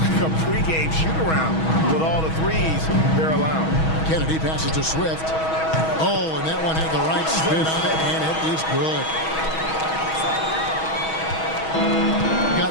a pregame shoot-around with all the threes they're allowing. Kennedy passes to Swift. Oh, and that one had the right spin on it, and it is good.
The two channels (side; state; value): right; late; 6.2 ms